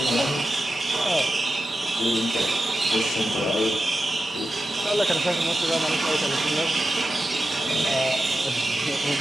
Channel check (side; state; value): both; normal; correlation 0.91